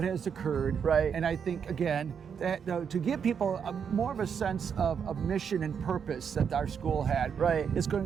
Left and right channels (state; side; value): quieter; left; 7.1 dB